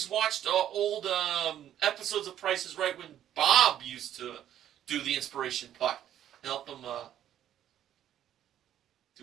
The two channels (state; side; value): quieter; left; 11.1 dB